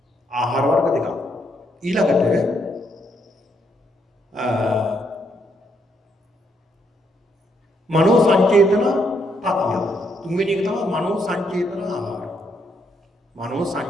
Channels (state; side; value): normal; both; correlation 0.75